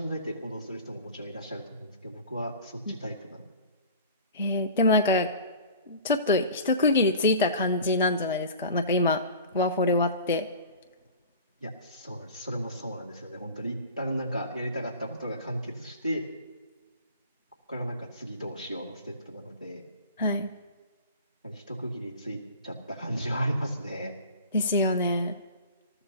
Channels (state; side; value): inverted; both; correlation -0.39